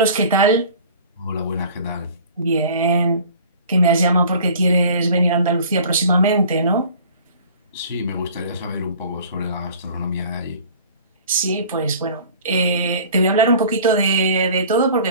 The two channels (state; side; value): inverted; both; correlation -0.46